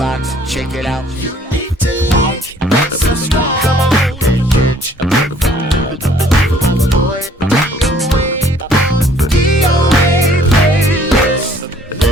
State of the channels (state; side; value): normal; both; correlation 0.58